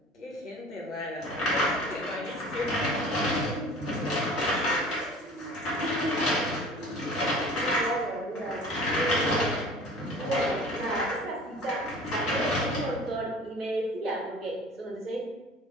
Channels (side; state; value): both; normal; correlation 0.44